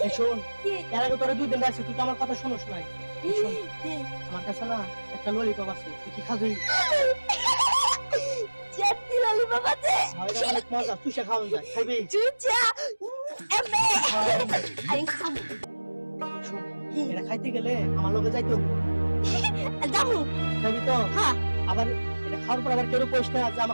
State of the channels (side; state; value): both; inverted; correlation -1.00